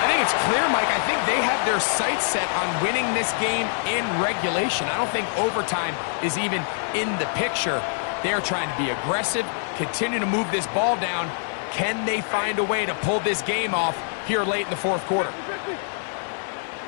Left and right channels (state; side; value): silent; right; digital silence